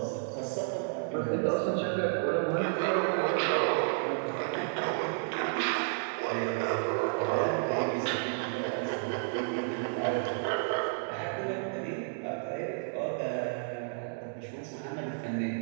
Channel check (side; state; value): left; silent; digital silence